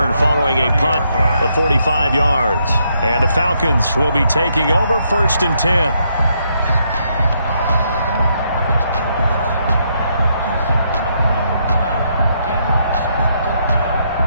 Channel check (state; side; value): inverted; both; correlation -0.76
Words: following a punt of 45 yards. And the Falcons will be taking over 1st and 10.